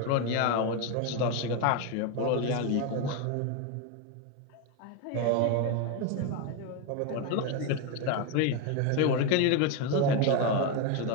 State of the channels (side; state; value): both; different; correlation 0.02